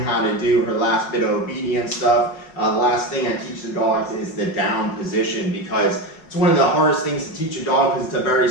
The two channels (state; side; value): late; right; 5.4 ms